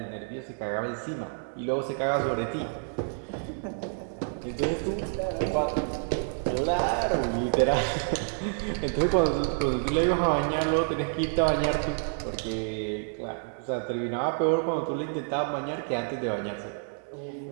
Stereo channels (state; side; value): silent; left; 59 dB below the other